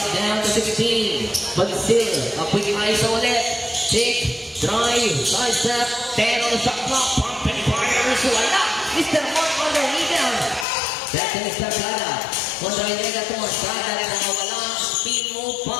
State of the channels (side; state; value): right; drops out; at 10.7 s